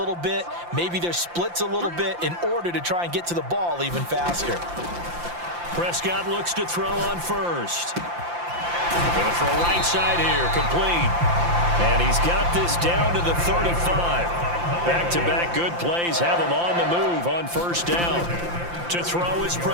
bit, maybe their splits a little bit in order to try and get to the ball even faster. Prescott looks to throw on first. Going to throw right side here, complete. And he's got this down to the 35. Back-to-back good plays have him on the move on first down. To throw is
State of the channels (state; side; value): late; left; 5.8 ms